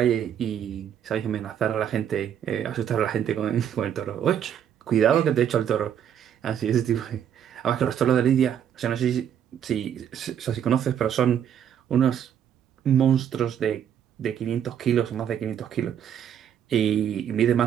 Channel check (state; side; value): quieter; left; 9.2 dB